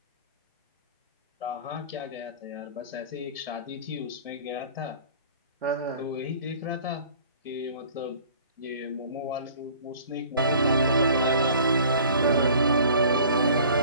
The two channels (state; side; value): inverted; both; correlation -0.48